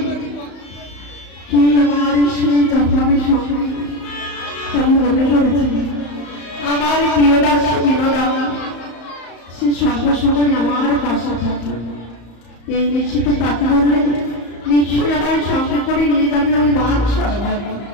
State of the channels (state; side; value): late; right; 34 ms